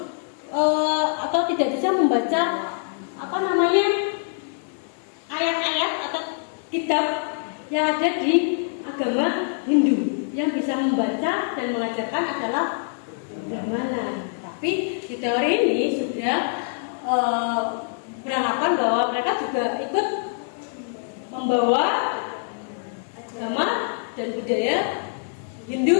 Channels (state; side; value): silent; right; digital silence